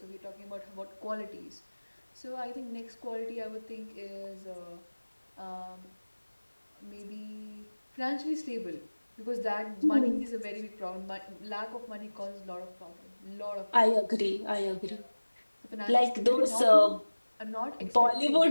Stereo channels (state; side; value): inverted; both; correlation -1.00